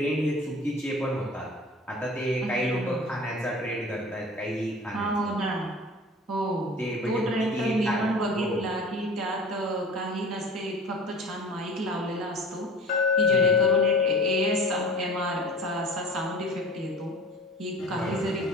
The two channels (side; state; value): both; normal; correlation 0.40